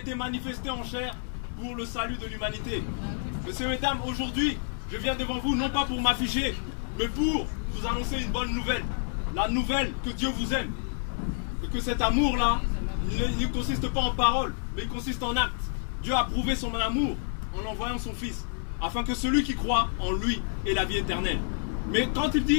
manifesté en chair pour le salut de l'humanité. Messieurs, mesdames, aujourd'hui, je viens devant vous non pas pour m'afficher, mais pour vous annoncer une bonne nouvelle. La nouvelle que Dieu vous aime. Et que cet amour-là, il ne consiste pas en paroles, mais il consiste en actes. Dieu a prouvé son amour en envoyant son Fils, afin que celui qui croit en lui ait la vie éternelle. Mais quand il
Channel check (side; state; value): right; silent; 59 dB below the other